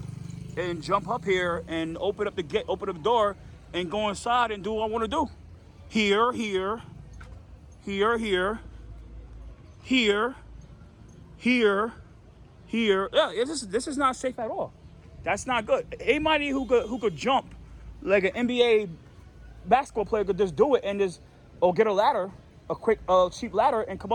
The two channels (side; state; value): both; identical; correlation 1.00